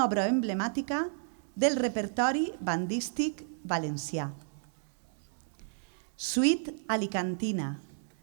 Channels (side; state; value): left; silent; 56 dB below the other